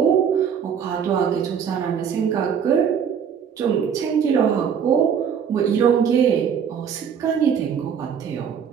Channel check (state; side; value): quieter; left; 7.6 dB